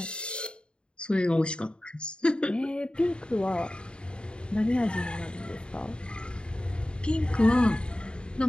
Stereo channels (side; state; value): right; late; 0.052 ms